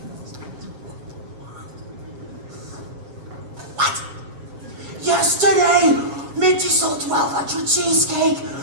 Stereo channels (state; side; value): late; left; 7.2 ms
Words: What? Yesterday, Minty sold 1,200 cheesecake